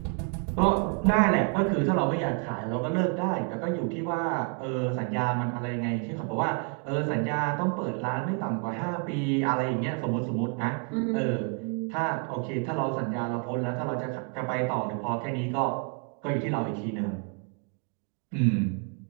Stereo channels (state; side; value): quieter; left; 36.9 dB